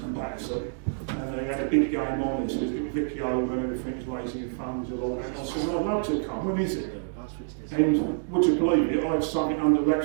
And they had a big game on this. Vicky over and everything's raising funds and all that. I said, I'd love to come. When is it? And would you believe it? I had something under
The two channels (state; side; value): silent; left; digital silence